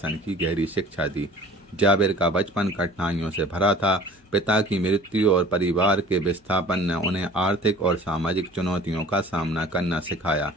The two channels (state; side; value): normal; both; correlation 0.46